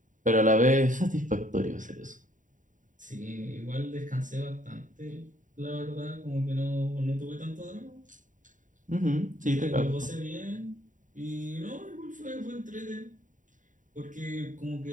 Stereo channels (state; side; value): late; left; 0.37 ms